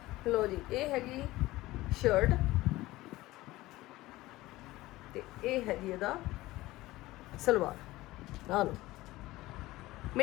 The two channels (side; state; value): right; quieter; 18.1 dB